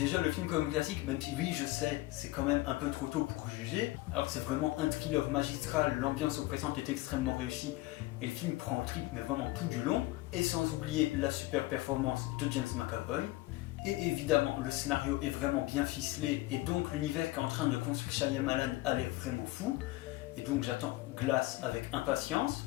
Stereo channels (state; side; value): quieter; right; 19.2 dB